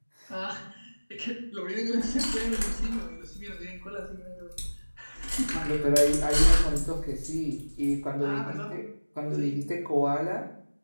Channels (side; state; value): both; inverted; correlation -1.00